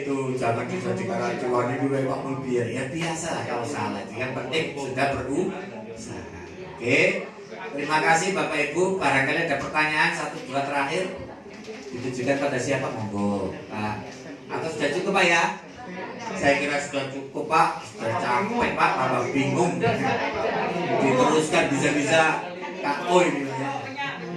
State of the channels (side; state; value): both; identical; correlation 1.00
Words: jangan dijadikan acuan itu Pak Mulbiar. Ya biasa lah kalau salah. Yang penting sudah berusaha. Oke. Terima kasih Bapak Ibu. Barangkali ada pertanyaan 1 2 terakhir. Ditujukan pada siapa, monggo Pak? Atau sudah cukup Pak ya? Saya kira sudah cukup Pak, sudah capek Pak, tambah bingung. Diteruskan bisa-bisa KO ini ya.